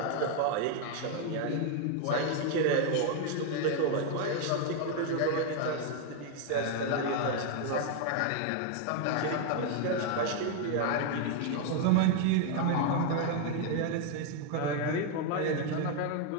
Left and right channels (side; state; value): both; different; correlation 0.00